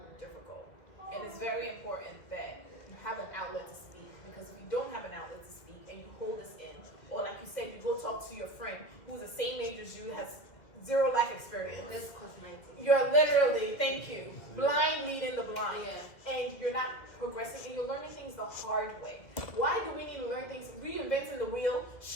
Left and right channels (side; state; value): right; late; 2.0 ms